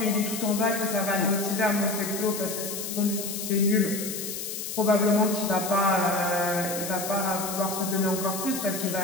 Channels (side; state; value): left; noise; hiss, 6 dB below the sound